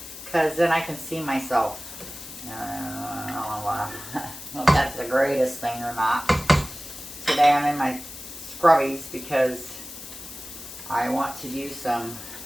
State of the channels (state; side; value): noise; left; hiss, 13 dB below the sound